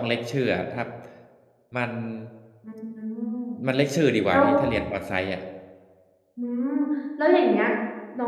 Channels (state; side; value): identical; both; correlation 1.00